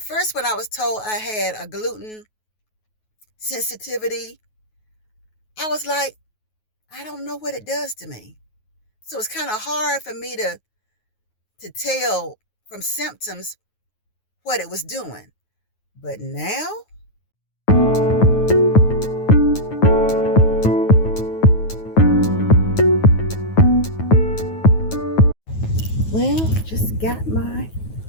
first, when I was told I had a gluten sensitivity, I was like, I don't know what it does to me. So it's kind of hard for me to tell from symptoms what it was doing. But now, well, just got my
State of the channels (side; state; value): right; late; 9.3 ms